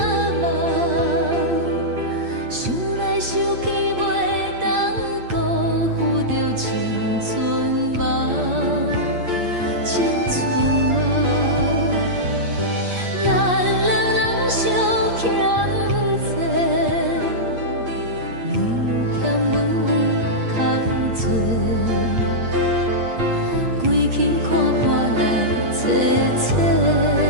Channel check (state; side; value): late; left; 8.5 ms